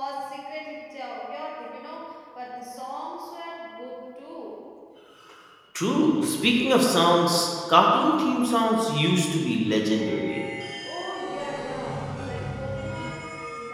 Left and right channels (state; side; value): identical; both; correlation 1.00